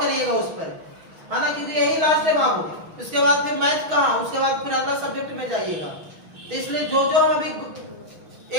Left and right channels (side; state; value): left; late; 6.3 ms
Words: उस पर, है ना, क्योंकि यही लास्ट है बाबू, इसके बाद फिर मैथ कहाँ, उसके बाद फिर अगला सब्जेक्ट में जाइएगा। तो इसलिए जो हम अभी